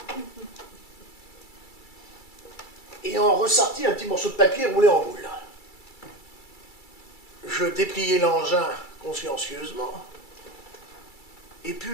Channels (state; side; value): late; right; 2.3 ms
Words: et en ressortis un petit morceau de papier roulé en boule. Je dépliai l'engin consciencieusement et